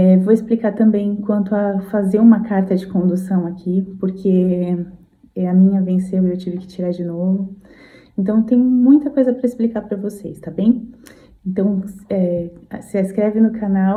Vou explicar também quanto a fazer uma carta de condução aqui, porque a minha venceu e eu tive que tirar de novo. Então, tem muita coisa para explicar para vocês, tá bem? Então, se inscreve no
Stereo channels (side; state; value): both; identical; correlation 1.00